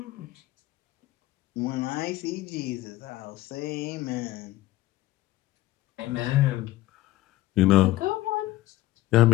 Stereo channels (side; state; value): right; quieter; 16.6 dB